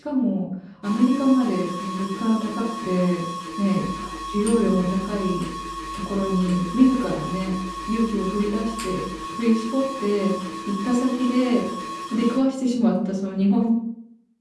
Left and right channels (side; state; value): both; identical; correlation 1.00